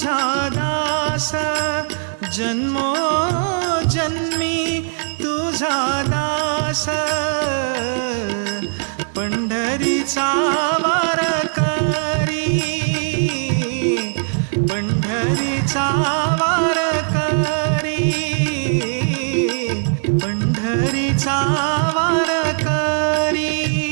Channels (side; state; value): left; silent; digital silence